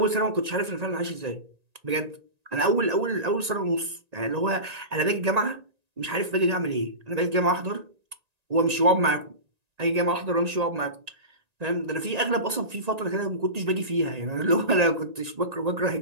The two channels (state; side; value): late; left; 1.9 ms